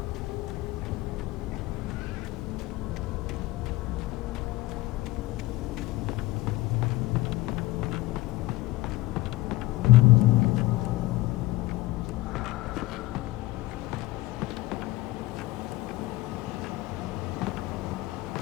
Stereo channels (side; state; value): right; quieter; 18.0 dB